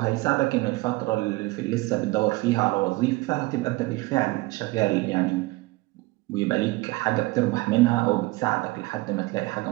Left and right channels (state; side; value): quieter; left; 21.6 dB